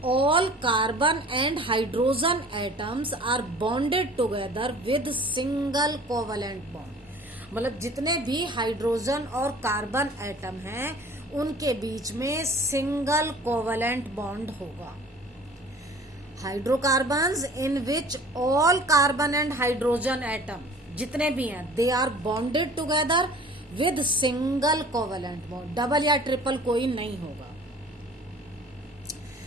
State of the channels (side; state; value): both; normal; correlation 0.47